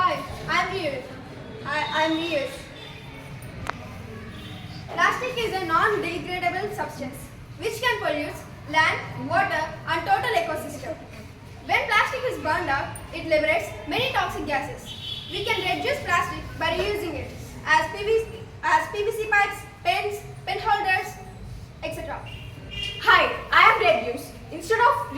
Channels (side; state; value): both; identical; correlation 1.00